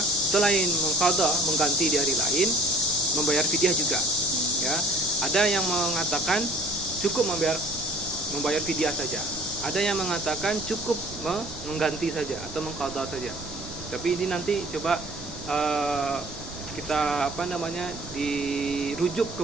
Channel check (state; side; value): noise; right; rumble, 17 dB below the sound